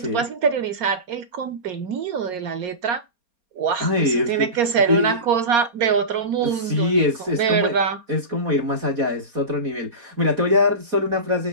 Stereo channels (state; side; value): late; left; 4.3 ms